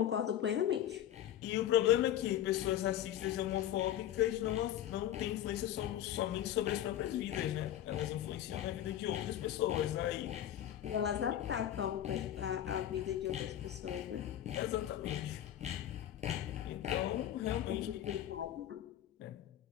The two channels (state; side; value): quieter; right; 11.7 dB